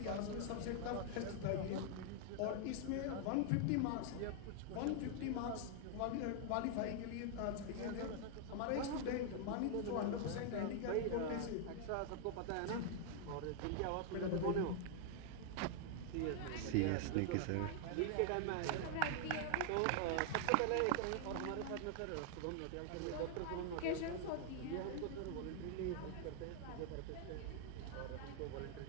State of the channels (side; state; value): both; different; correlation 0.00